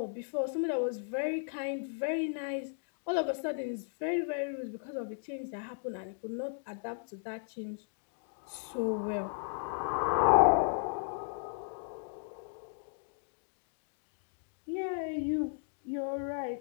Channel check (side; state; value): right; silent; digital silence